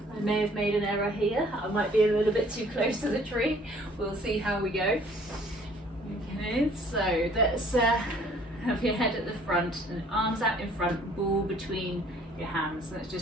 I may have made an error here. I might be a little bit too close to the tree. We'll see how we go. Okay, so let's have your head at the front and arms out in front, ball between your hands. Let's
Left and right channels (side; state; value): both; normal; correlation 0.57